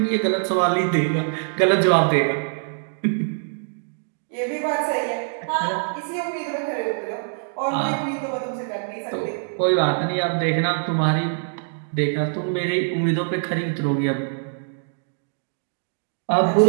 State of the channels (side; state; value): left; silent; digital silence